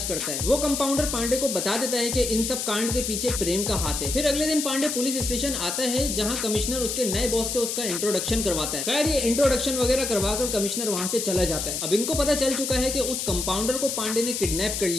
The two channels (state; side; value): noise; left; hiss, 3 dB below the sound